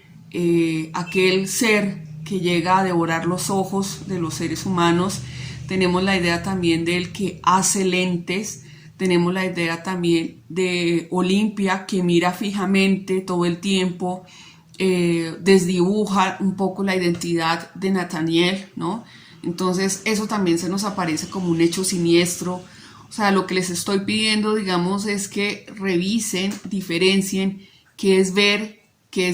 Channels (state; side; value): identical; both; correlation 1.00